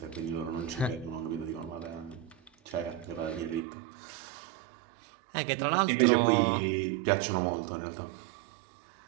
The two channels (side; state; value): left; drops out; at 3.6 s